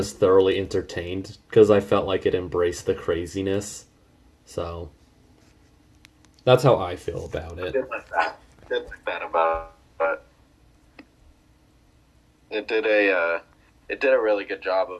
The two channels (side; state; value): both; identical; correlation 1.00